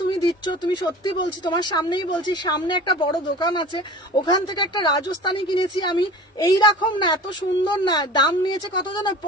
তুমি দিচ্ছ, তুমি সত্যি বলছি, তোমার সামনেই বলছি, সামনে একটা বড় দোকান আছে, ওখান থেকে একটা রাজস্থানী কিনেছি আমি, এইরকম না, এত সুন্দর না। দাম নিয়েছে কত জানো?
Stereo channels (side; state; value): both; normal; correlation 0.39